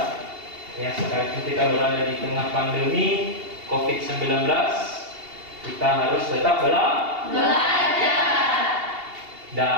di tengah pandemi COVID-19, kita harus tetap Belajar.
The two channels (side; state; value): left; late; 2.8 ms